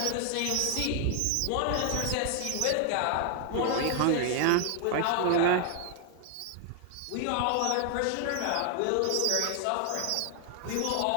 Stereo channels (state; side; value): different; both; correlation 0.00